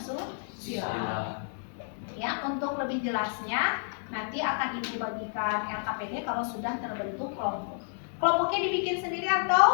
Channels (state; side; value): silent; right; 58 dB below the other